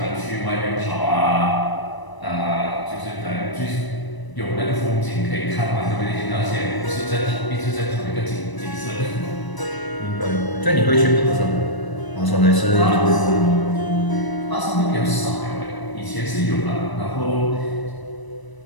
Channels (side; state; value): right; late; 1.0 ms